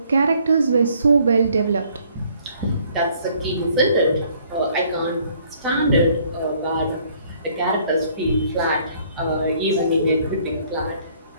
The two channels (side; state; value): both; inverted; correlation -0.62